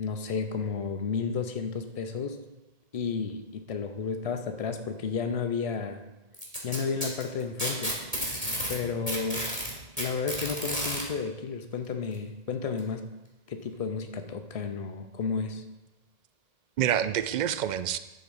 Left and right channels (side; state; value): left; late; 1.8 ms